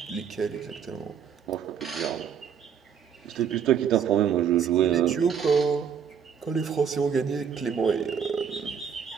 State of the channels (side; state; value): left; quieter; 7.5 dB